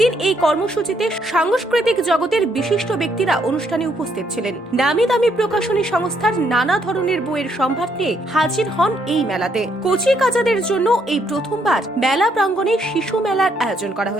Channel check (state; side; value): normal; both; correlation 0.72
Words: এই কর্মসূচিতে সাংস্কৃতিক জগতের বিশিষ্ট ব্যক্তিরা অনুষ্ঠানে উপস্থিত ছিলেন। নামি দামি প্রকাশনী সংস্থার নানা ধরনের বইয়ের সম্ভার নিয়ে হাজির হন এই মেলাতে। কচি কাচাদের জন্য এই প্রথমবার মেলা প্রাঙ্গণে শিশু মেলার আয়োজন করা